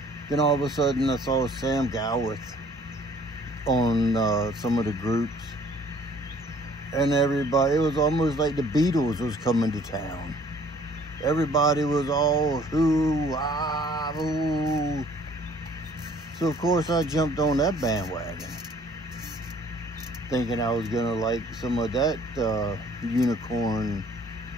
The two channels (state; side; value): normal; both; correlation 0.57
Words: Then all of a sudden I saw Sam Gowith on some of the groups, and everybody, it was almost like the Beatles was coming to town. Everybody was all hoo, ah, ooh. So of course I jumped on that bandwagon, thinking I was gonna like some of that unicorn.